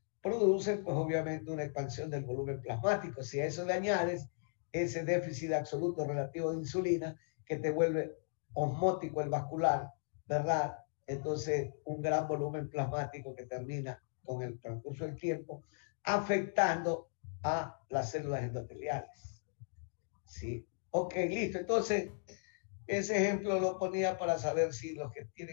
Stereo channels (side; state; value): right; silent; digital silence